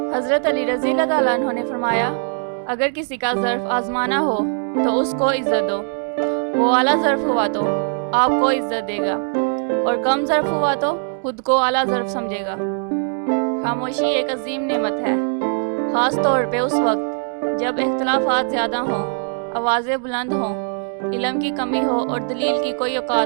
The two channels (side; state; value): left; silent; 60 dB below the other